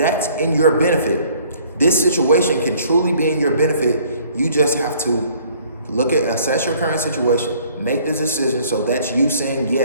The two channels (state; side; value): inverted; both; correlation -0.57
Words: in your benefit. This situation can truly be in your benefit. You just have to assess your current situation, make the decision. So that's you saying,